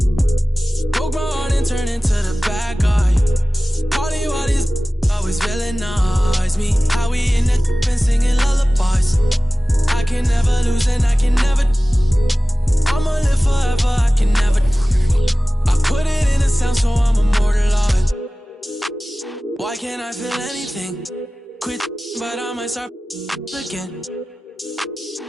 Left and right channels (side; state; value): both; normal; correlation 0.97